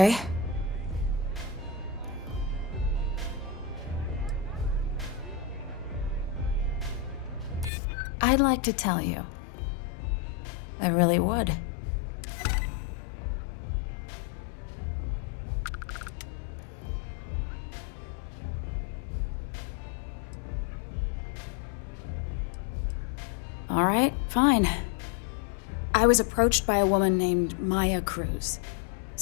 I'd like to tell you. I really would. All right, fine. I was approached by a woman named Maya Cruz.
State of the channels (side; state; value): right; drops out; at 7.7 s